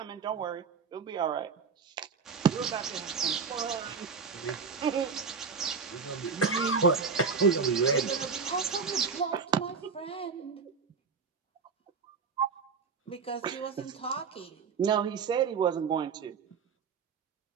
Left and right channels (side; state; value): left; quieter; 5.5 dB